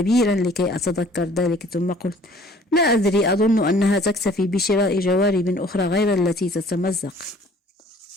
لكي أتذكر ذلك، ثم قلت: لا أدري، أظن أنها تكتفي بشراء جوارب أخرى غير التي تتمزق.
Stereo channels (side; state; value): both; normal; correlation 0.54